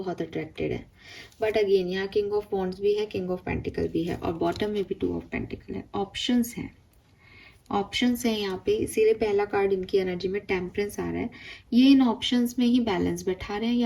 अट्रैक्टेड है, बट अगेन यहाँ किंग ऑफ वॉन्ड्स भी है, किंग ऑफ पेंटिकल भी है और बॉटम में भी 2 ऑफ पेंटिकल है। ऑप्शंस हैं, ऑप्शंस हैं यहाँ पे, इसीलिए पहला कार्ड इनकी एनर्जी में टेम्परेंस आ रहा है। ये इन ऑप्शंस में ही बैलेंस बैठा रहे हैं,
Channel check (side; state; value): both; identical; correlation 1.00